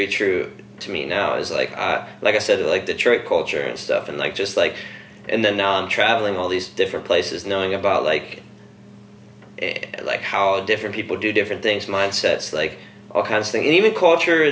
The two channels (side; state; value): both; identical; correlation 1.00